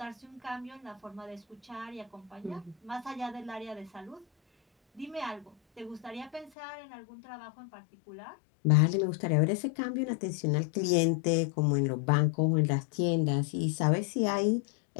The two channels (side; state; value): right; drops out; at 6.5 s